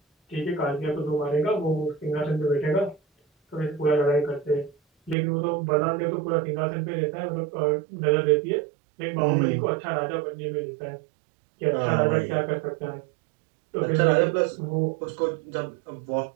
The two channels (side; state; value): left; drops out; at 5.2 s